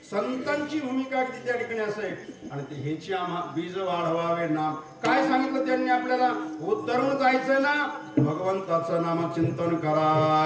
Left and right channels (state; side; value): identical; both; correlation 1.00